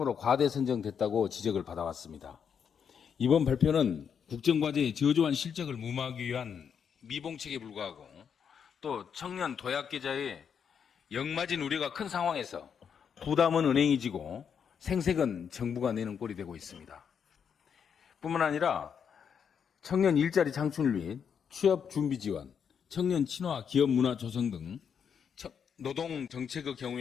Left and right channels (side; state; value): right; quieter; 7.3 dB